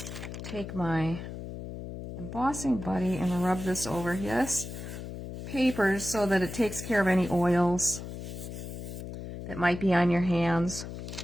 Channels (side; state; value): left; noise; hum, 9 dB below the sound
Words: take my embossing buddy and rub this over his paper so that it takes care of any oils that might be on your hands,